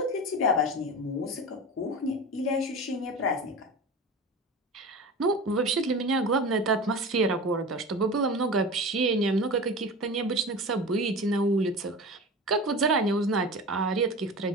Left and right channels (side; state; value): both; normal; correlation 0.31